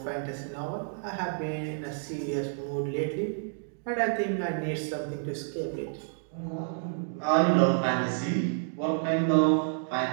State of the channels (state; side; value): silent; left; digital silence